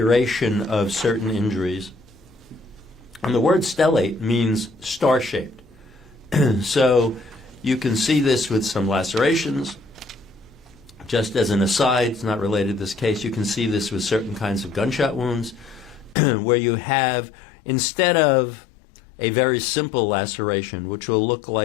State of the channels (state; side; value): drops out; right; at 16.2 s